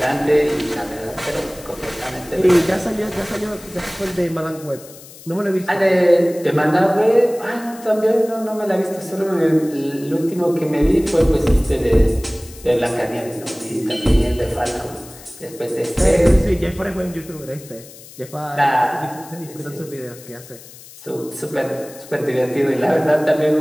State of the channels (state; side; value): noise; left; hiss, 19 dB below the sound